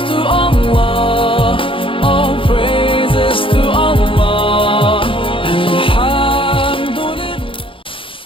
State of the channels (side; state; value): right; late; 0.25 ms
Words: to Allah, all praises to Allah. Alhamdulillah.